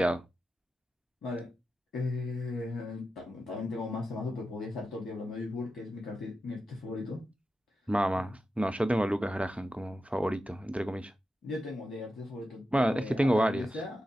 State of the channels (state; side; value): normal; both; correlation 0.90